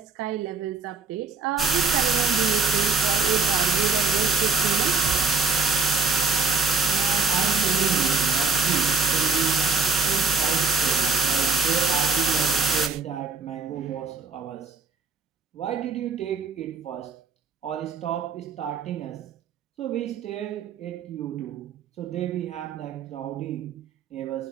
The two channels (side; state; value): left; quieter; 4.5 dB